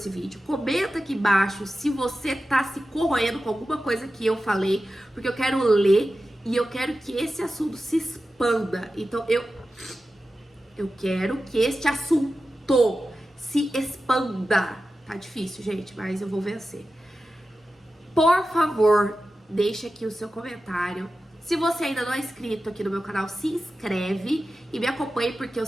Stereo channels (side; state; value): both; normal; correlation 0.93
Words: vídeo? Comenta aqui embaixo se você tá se corroendo com alguma coisa que eu falei, porque eu quero ler e eu quero que esse assunto se expanda. Então, eu quero que este assunto se expanda. Tá difícil, gente, mas eu vou vencer. Por favor, deixe aqui o seu comentário. Se você ainda não é inscrito aqui no meu canal, se inscreve e me acompanhe, porque eu